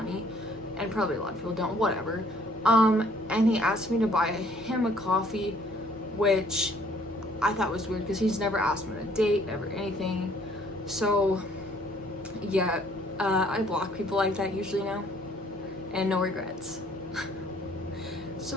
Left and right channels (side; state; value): both; normal; correlation 0.60